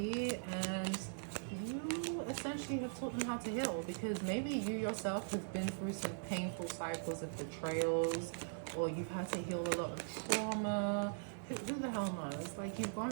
and you essentially have taught them how to heal, because maybe you yourself have been through some painful cycles of betrayals, or you've had to heal a lot of trauma. Who the hell knows? Like, you've gone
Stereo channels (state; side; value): silent; left; digital silence